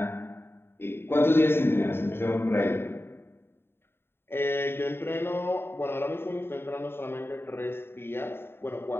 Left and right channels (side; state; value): right; late; 0.11 ms